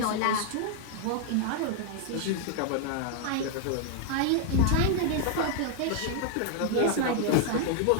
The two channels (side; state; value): both; different; correlation 0.00